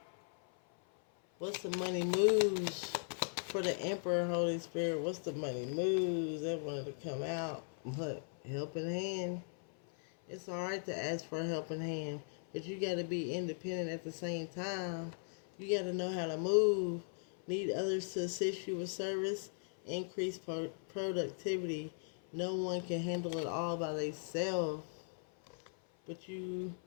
What's the money moves for the Emperor, Holy Spirit? What's the money moves? That wanted to come out. What? Helping hand. It's alright to ask for a helping hand, but you got to be independent at the same time. You got to know how to move. Need others to assist you with service. Increase productivity. No one can handle it all by themselves. But you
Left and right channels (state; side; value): silent; right; 52 dB below the other